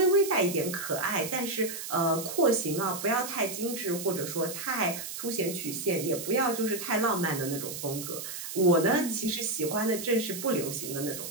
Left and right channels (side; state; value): right; noise; hiss, 8 dB below the sound